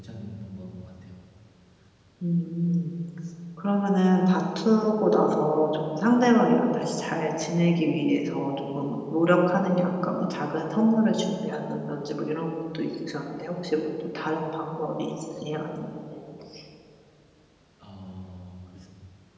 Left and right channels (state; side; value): identical; both; correlation 1.00